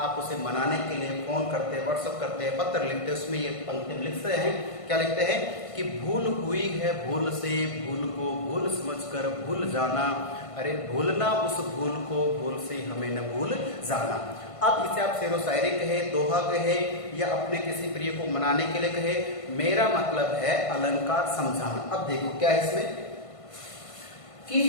उसे मनाने के लिए फोन करते हैं, व्हाट्सएप करते हैं, पत्र लिखते हैं, उसमें ये पंक्ति लिखते हैं, क्या लिखते हैं कि भूल हुई है भूल से, भूल को भूल समझकर भूल जाना, अरे भूलना उस भूल को भूल से हमें न भूल जाना। अब इसे आप शेरो शायरी कहे, दोहा कहे या अपने किसी प्रिय को मनाने के लिए कहे, मेरा मतलब है अलंकार समझाना। अब देखो क्या है इसमें कि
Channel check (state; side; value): late; right; 1.5 ms